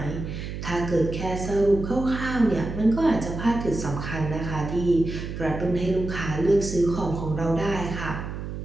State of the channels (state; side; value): noise; right; hum, 7 dB below the sound